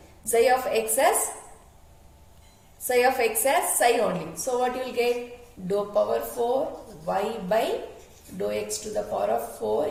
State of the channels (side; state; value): both; identical; correlation 1.00